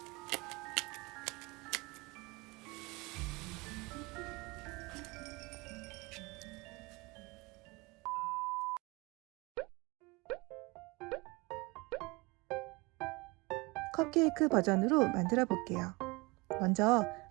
컵케이크 버전으로 만들어 볼게요. 먼저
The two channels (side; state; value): left; quieter; 25.2 dB